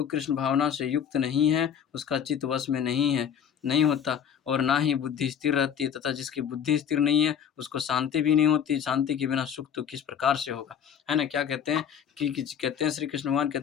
कृष्ण भावना से युक्त नहीं है, उसका चित्त वश में नहीं होता और ना ही बुद्धि स्थिर रहती है तथा जिसकी बुद्धि स्थिर नहीं है, उसको शांति भी नहीं होती। शांति के बिना सुख तो किस प्रकार से होगा? है ना? क्या कहते हैं कि कहते हैं श्री कृष्ण भगवान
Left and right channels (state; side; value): quieter; right; 8.3 dB